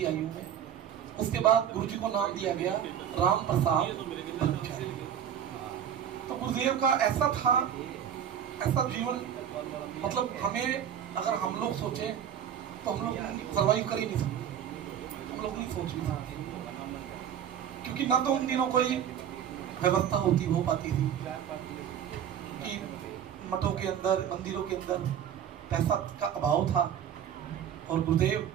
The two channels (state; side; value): quieter; left; 9.2 dB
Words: आयु में। उसके बाद गुरु जी को नाम दिया गया राम प्रसाद ब्रह्मचारी। तो गुरुदेव का ऐसा था, ऐसा जीवन, मतलब हमें अगर हम लोग सोचें तो हम लोग सर्वाइव कर ही नहीं सकते, हम लोग नहीं सोच भी सकते, क्योंकि ना तो उन दिनों कोई व्यवस्था हो पाती थी कि मठों के अंदर, मंदिरों के अंदर पैसा का अभाव था। और गुरुदेव